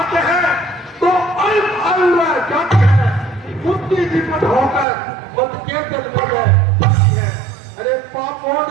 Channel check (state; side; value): drops out; left; at 4.9 s